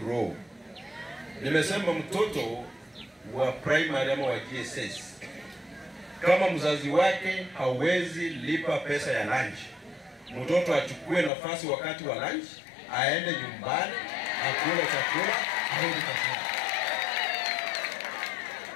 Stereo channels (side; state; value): right; drops out; at 11.3 s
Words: roho. Nimesema mtoto wa primary ama wa GSS, kama mzazi wake hawezi lipa pesa ya lunch, mtoto achukue nafasi wakati wa lunch, aende nyumbani, akule chakula, aende kazini.